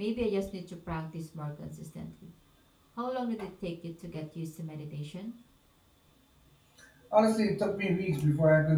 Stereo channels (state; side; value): identical; both; correlation 1.00